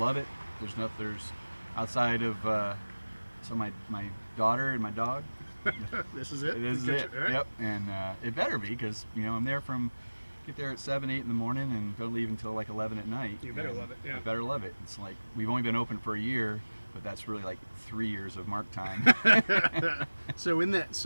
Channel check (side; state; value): both; inverted; correlation -1.00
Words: it. There's outside of so my daughter and my dog. This is it? It is it. Right? Yep. And it better be, because I'm there get there at 7, 8 in the morning and don't leave until 11 at night. You better love it. Yeah. I better love it. It's we've only been open for a year, but that's really 3 years of Mark time. So